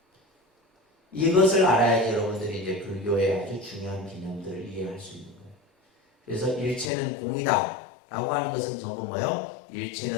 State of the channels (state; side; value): drops out; right; at 6.9 s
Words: 이것을 알아야지 여러분들이 이제 불교의 아주 중요한 개념들을 이해할 수 있는 거예요. 그래서 일체는 공이다 라고 하는 것은 전부 뭐예요?